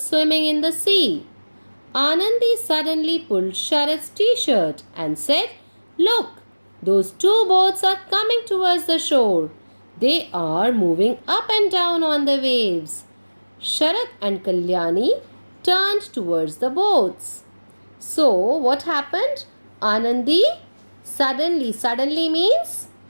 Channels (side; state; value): both; inverted; correlation -1.00